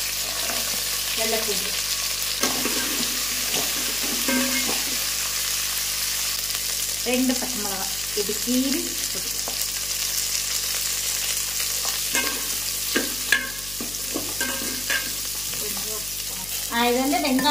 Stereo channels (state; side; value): noise; left; hum, 15 dB below the sound